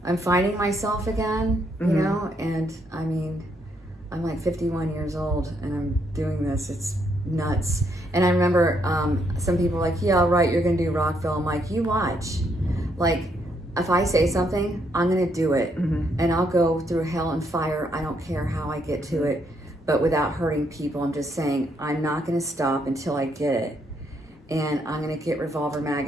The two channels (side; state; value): both; normal; correlation 0.74